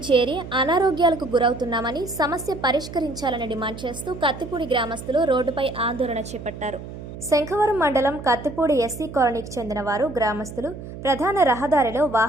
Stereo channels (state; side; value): noise; right; hum, 12 dB below the sound